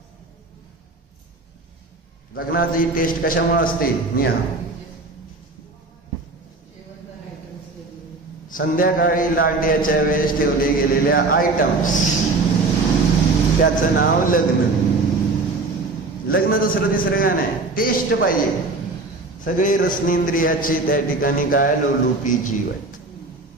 लग्नाची टेस्ट कशामुळे असते निहा. संध्याकाळी लांड्याच्या वेळेस ठेवले गेलेल्या आयटम्स, त्याचं नाव लग्न. लग्न दुसरं तिसरं काय नाही, टेस्ट पाहिजे. सगळे रसनेंद्रियाचे त्या ठिकाणी काय लोलुपी जीव आहेत.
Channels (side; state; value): left; quieter; 3.5 dB